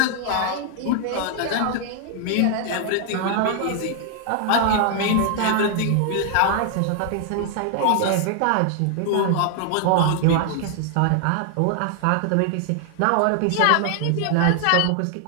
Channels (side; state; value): both; different; correlation 0.00